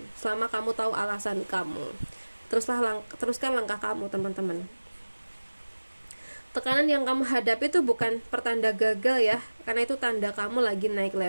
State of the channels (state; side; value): inverted; both; correlation -1.00